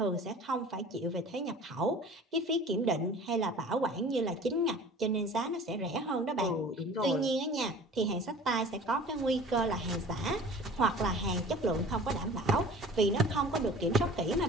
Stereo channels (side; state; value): both; normal; correlation 0.44